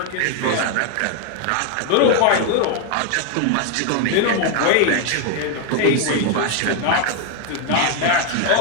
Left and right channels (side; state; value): both; different; correlation 0.00